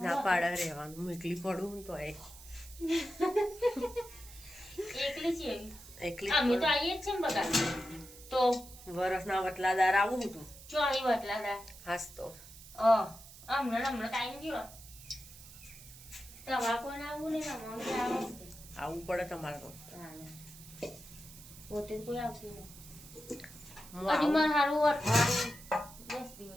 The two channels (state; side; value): noise; right; hiss, 17 dB below the sound